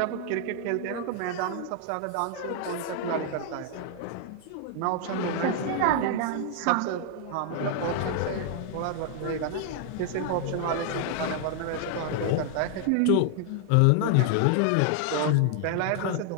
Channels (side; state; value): both; different; correlation 0.00